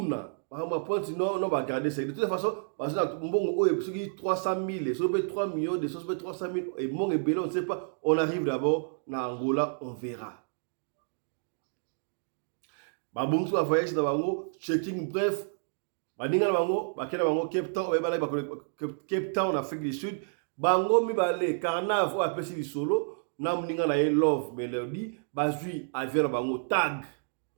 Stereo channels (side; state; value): left; silent; digital silence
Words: ba pointe non ba garder ça de toute façon parce que mbongo oyo soki 300 000 soki 3 millions de soki 300 000 et mon et belon on ne sait pas, on arrive d'abord na Angola on verra ba bongo ba voyage na bango checking bref ba ninga na bango ba kena bango Cape Town ba bala ba Cape Town en Afrique du Sud bango mi balé Carnaval a pesi di solo na mninga na ye Love Melody bazui avion na bango tag